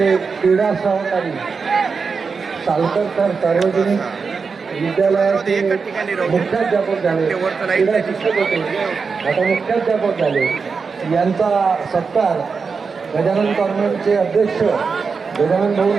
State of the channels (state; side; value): quieter; left; 5.1 dB